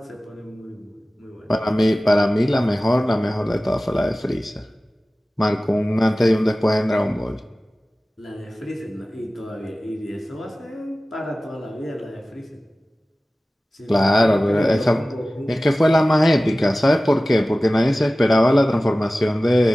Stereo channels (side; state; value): both; normal; correlation 0.97